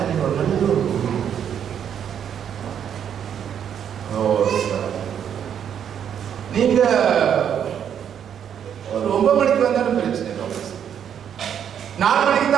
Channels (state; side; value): quieter; left; 8.8 dB